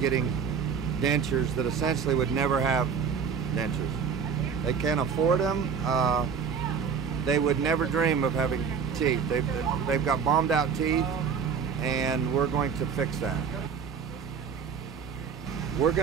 dentures that essentially would never have dentures. They can't afford them. They would never dream of having teeth. They've got bombed out teeth, and we're going to fix that. We're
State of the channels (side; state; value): left; quieter; 6.6 dB